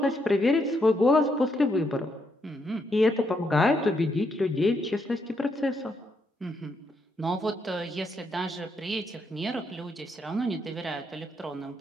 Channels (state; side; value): normal; both; correlation 0.77